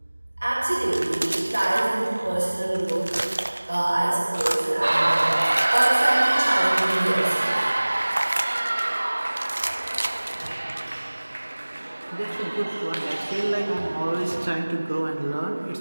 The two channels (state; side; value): inverted; both; correlation -1.00